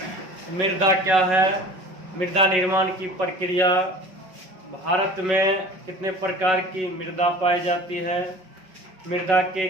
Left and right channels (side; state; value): left; late; 5.4 ms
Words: मृदा क्या है, मृदा निर्माण की प्रक्रिया, भारत में कितने प्रकार की मृदा पाई जाती है, मृदा के